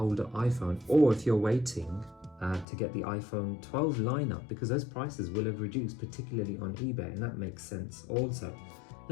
iPhone, or if you're waiting to get the iPhone 12 lineup, because those prices will have reduced, particularly on eBay, and that makes sense also.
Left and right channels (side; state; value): right; drops out; at 2.7 s